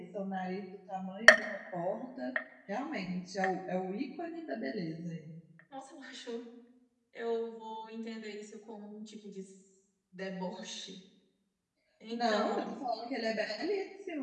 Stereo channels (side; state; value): both; identical; correlation 1.00